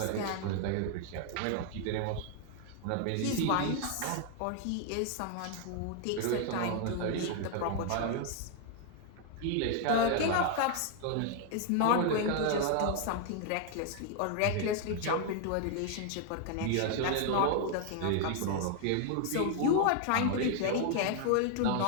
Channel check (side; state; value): both; different; correlation 0.00